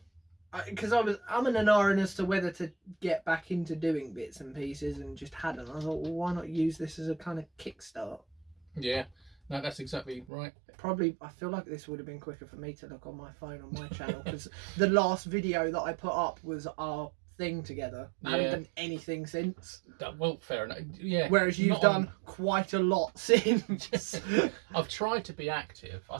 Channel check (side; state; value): left; drops out; at 10.2 s